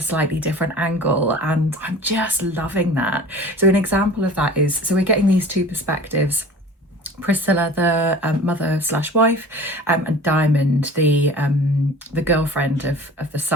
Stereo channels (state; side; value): normal; both; correlation 0.42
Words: slightly different angle, and I'm just loving that. So an example of that is, so we're getting these two perspectives: Priscilla, the mother slash wife, and Diamond, the girlfriend of the